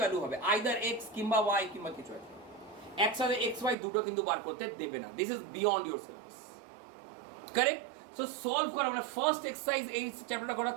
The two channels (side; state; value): left; drops out; at 3.8 s